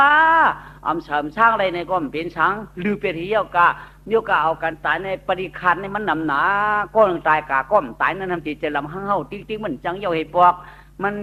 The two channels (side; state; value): both; identical; correlation 1.00